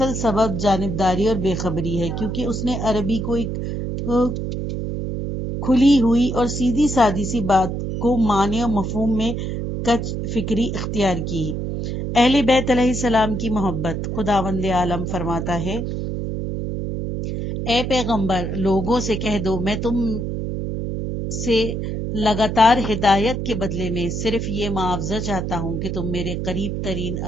سبب جانبداری اور بے خبری ہے، کیونکہ اس نے عربی کو ایک کھلی ہوئی اور سیدھی سادی سی بات کو معنی اور مفہوم میں کج فکری اختیار کی۔ اہل بیت علیہ السلام کی محبت۔ خداوند عالم فرماتا ہے، اے پیغمبر، لوگوں سے کہہ دو میں تم سے لگاتار ہدایت کے بدلے میں صرف یہ معاوضہ چاہتا ہوں کہ تم میرے قریب ترین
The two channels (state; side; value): noise; right; hum, 3 dB below the sound